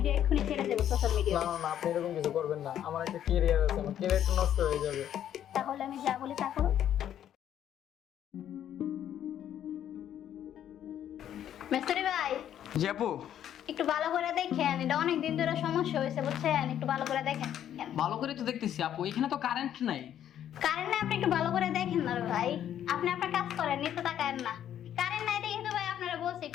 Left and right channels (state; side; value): quieter; right; 10.5 dB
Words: এক্ষুনি ছেড়ে দেবো সোশ্যাল মিডিয়া। না না না, আপনি এরকম কিছু করবেন না। আমার একটা ক্যারিয়ার আছে, আমার ক্যারিয়ারটা নষ্ট হয়ে যাবে। তাহলে আমি যা বলি তা করো। মিস্ত্রি ভাই, জি আপু। একটু ভালো করে দেখেন, এটা অনেক দিন ধরে সমস্যা হয়েছে বুঝছেন, একটু ভালো করে দেখেন। ভালো করে তো দেখতেছি আপু, এখানে তো কারেন্ট নাই। কারেন্ট নাই, আপনি একটু ভালো করে দেখেন না রে ভাই। আপনি আপনার কাজ করেন, নিতে তাকায়েন না। কারেন্ট নাই দেখে তো ভাই আপনারা বলছি